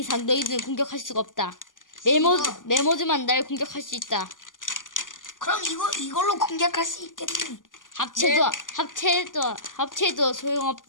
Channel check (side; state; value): right; late; 0.88 ms